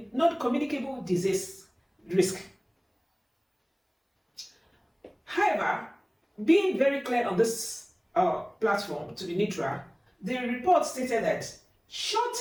non-communicable disease risk. However, being very clear on this platform to be neutral, the report stated that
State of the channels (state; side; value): identical; both; correlation 1.00